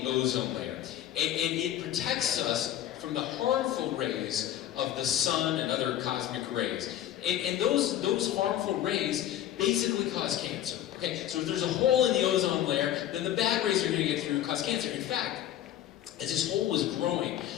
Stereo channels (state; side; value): quieter; right; 11.9 dB